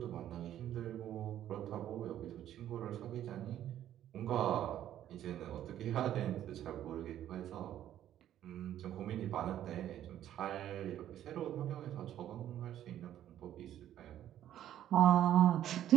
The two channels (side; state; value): left; quieter; 11.6 dB